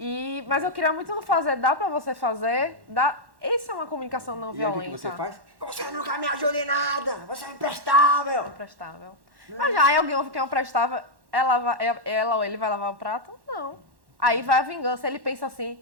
Mas eu queria muito não fazer, dá pra você fazer? Dá. Isso é uma comunicação não violenta. E aí o que você faz? Você nunca me ajuda em nada, você é imprestável. Imprestável. Mas já aí alguém ouve que é imprestável, ela ou ele vai lavar o prato? Não. Aí vai a vingança, ele pensa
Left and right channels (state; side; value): late; left; 1.1 ms